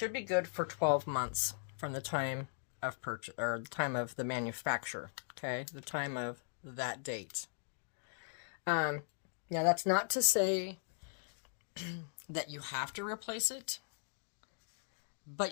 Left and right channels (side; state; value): right; silent; digital silence